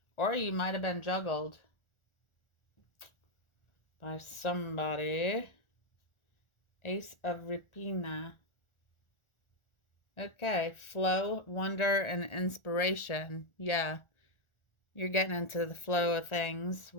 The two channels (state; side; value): late; right; 1.4 ms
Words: Or you might have been juggled by somebody. Ace of Rapina. Okay, flow, wonder, and inspiration. Yeah, you're getting into the flow of things,